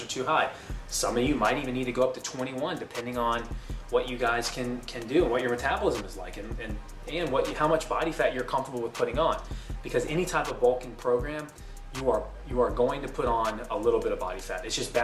are too high. Some of you might even need to go up to 21, depending on what you guys can do and what your metabolism is like, and how much body fat you're comfortable with putting on. Because any type of bulking program, you are going to put on a little bit of body fat. It's just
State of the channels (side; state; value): both; identical; correlation 1.00